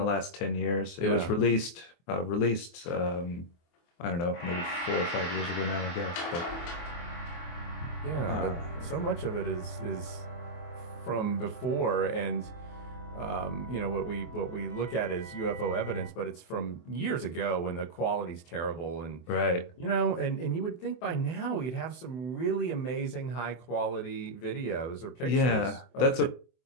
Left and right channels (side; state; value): right; late; 24 ms